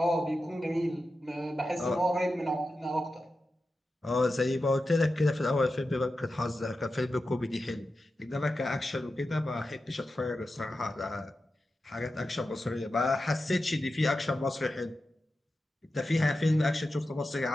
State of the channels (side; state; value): both; normal; correlation 0.91